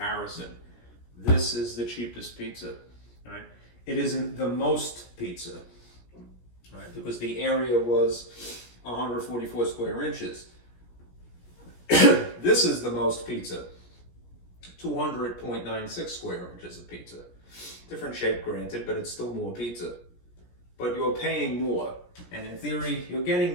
This is the cheapest pizza, right? It isn't the most pizza, right? Because the area was 144 square inches. This is the most pizza, 200.96 square inches of pizza. Different shape, granted, but it's still more pizza. But you're paying more, and in theory, you're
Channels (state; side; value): late; right; 17 ms